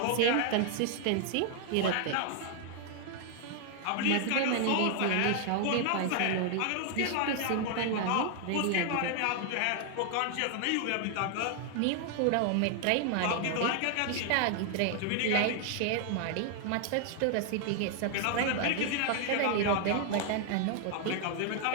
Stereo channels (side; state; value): both; different; correlation 0.00